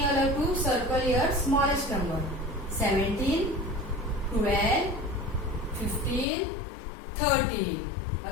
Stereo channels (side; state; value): right; drops out; at 6.2 s